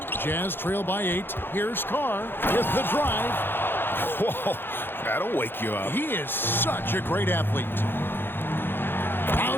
Jazz trail by 8. Here's Carr with the drive. Whoa, that'll wake you up. He is such a great athlete.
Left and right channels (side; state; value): right; late; 0.10 ms